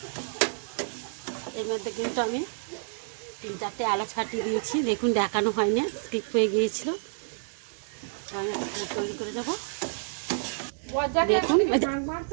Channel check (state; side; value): silent; left; digital silence